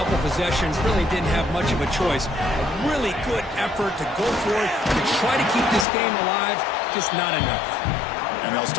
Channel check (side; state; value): right; drops out; at 5.9 s